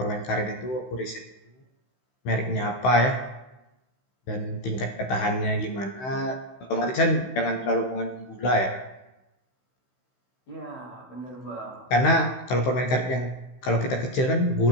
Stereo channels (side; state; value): right; late; 16 ms